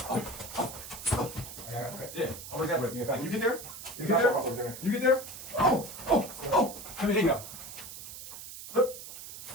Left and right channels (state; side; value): noise; right; hiss, 12 dB below the sound